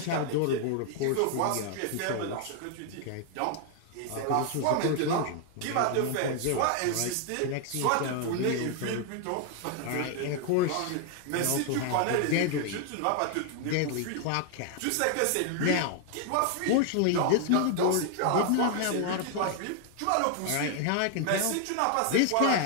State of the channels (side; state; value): both; different; correlation 0.00